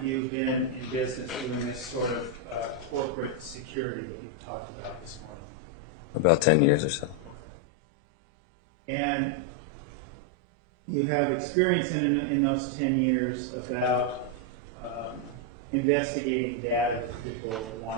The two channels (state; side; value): normal; both; correlation 0.01